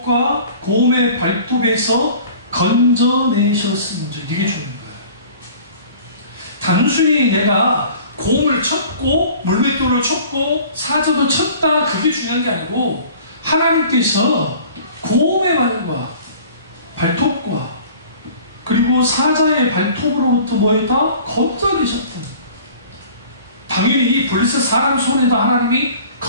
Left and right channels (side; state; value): both; inverted; correlation -0.47